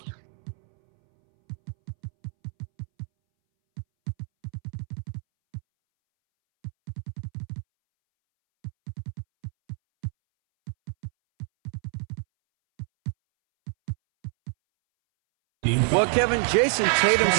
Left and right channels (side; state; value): left; silent; 60 dB below the other